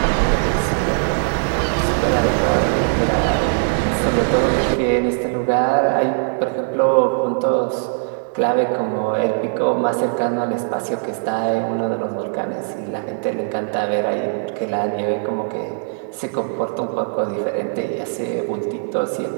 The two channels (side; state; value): left; silent; 66 dB below the other